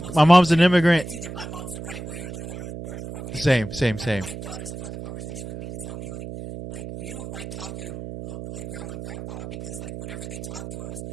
My mom's an immigrant. it's either my mom's the right way or the wrong way. Same. My daughters have had the conversation with me to tell me like we don't like talking to like grandma and grandpa because like whenever they talk to us,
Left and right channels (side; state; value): right; noise; hum, 9 dB below the sound